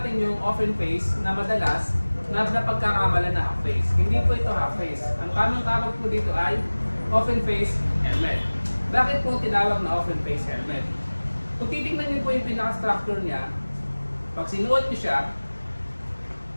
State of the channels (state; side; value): inverted; both; correlation -1.00